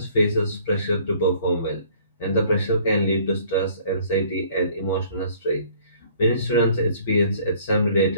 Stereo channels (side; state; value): both; inverted; correlation -0.56